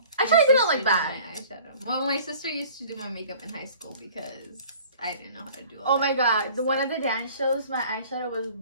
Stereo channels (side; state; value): both; inverted; correlation -0.48